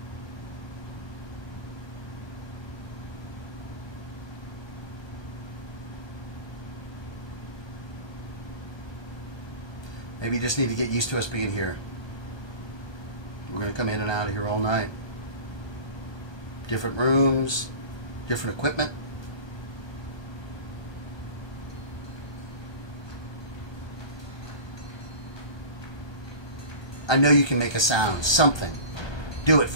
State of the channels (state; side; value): late; right; 1.2 ms